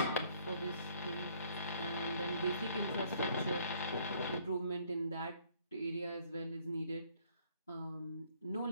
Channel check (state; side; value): inverted; both; correlation -0.62